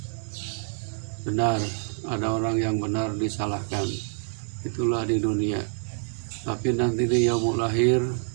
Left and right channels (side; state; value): left; silent; 60 dB below the other